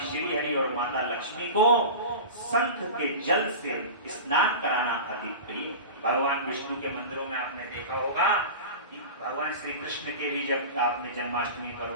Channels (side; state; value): both; inverted; correlation -0.31